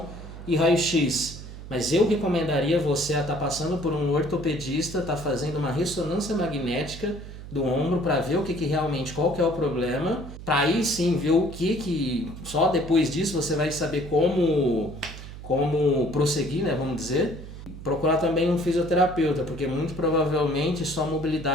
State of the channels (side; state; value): right; noise; hum, 12 dB below the sound